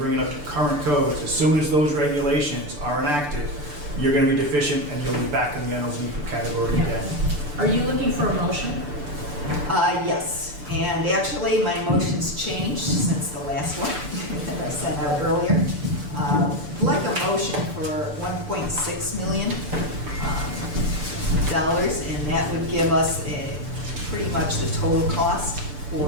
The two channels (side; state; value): left; late; 6.8 ms